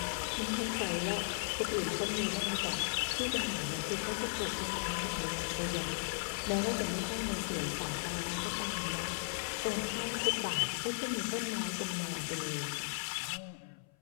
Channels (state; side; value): silent; right; 54 dB below the other